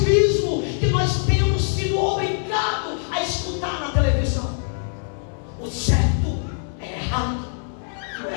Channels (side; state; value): right; silent; digital silence